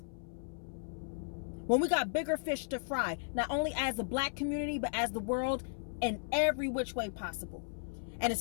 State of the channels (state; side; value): silent; right; 54 dB below the other